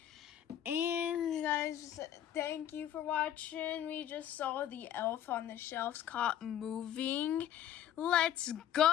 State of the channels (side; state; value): right; quieter; 10.9 dB